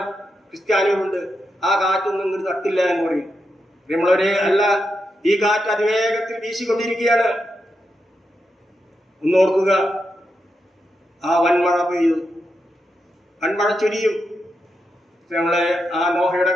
ക്രിസ്ത്യാനികളുണ്ട്, ആ കാറ്റൊന്നും ഇങ്ങോട്ട് തട്ടില്ല എന്ന് പറയും. പ്രിയമുള്ളവരെ, അല്ല, ഈ കാറ്റ് അതിവേഗത്തിൽ വീശിക്കൊണ്ടിരിക്കുകയാണ്. ഒന്നോർക്കുക, ആ വൻമഴ പെയ്തു, വൻമഴ ചൊരിയും. നമ്മളെ ആ നോഹയുടെ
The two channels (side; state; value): both; normal; correlation 0.86